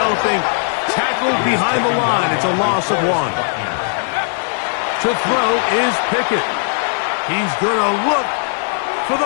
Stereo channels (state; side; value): silent; right; 60 dB below the other